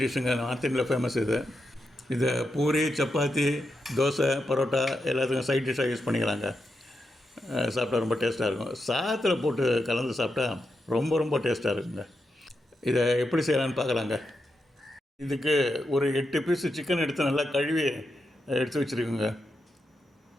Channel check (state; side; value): normal; both; correlation 0.86